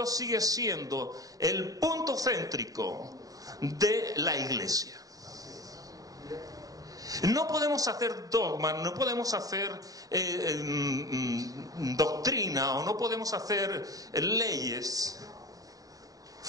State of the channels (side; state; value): left; late; 0.17 ms